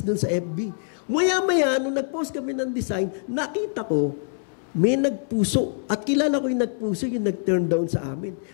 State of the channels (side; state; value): right; silent; 62 dB below the other